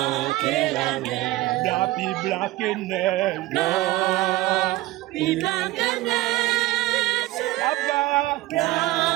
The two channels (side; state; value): left; quieter; 17.9 dB